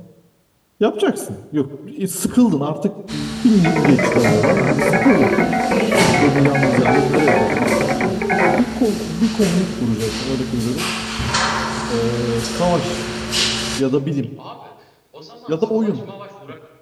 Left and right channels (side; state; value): both; identical; correlation 1.00